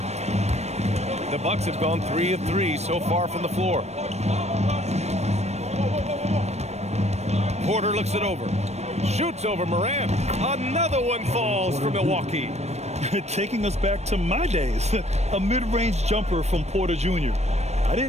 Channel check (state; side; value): late; left; 0.32 ms